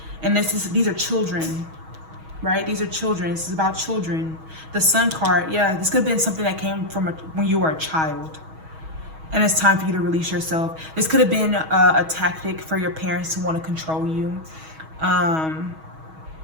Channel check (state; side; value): late; left; 6.3 ms